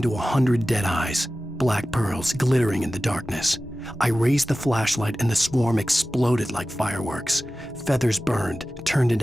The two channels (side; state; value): both; normal; correlation 0.95